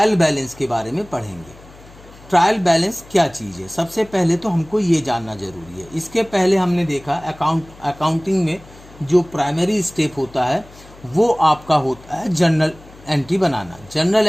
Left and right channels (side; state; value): left; noise; hum, 22 dB below the sound